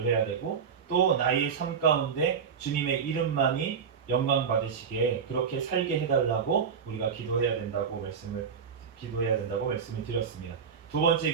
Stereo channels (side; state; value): left; quieter; 6.6 dB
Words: 해야 되고, 또 나의 삶 가운데 주님의 이름만이 영광 받으시게 그렇게 살게 해달라고 우리가 기도해야 된다고 말씀을 드렸습니다. 두 번째